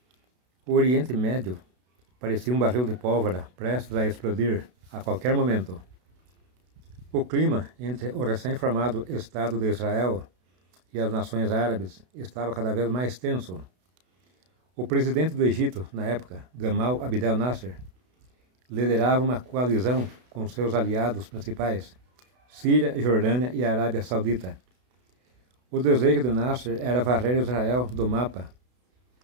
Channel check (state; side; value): late; left; 32 ms